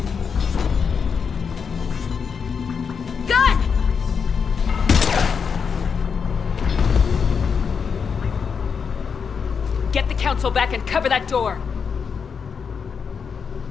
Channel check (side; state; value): right; quieter; 6.2 dB